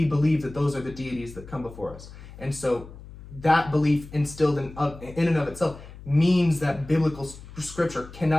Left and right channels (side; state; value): left; noise; hum, 16 dB below the sound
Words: believe that those are the deities that come before us. And so that belief instilled in and of itself means that biblical scripture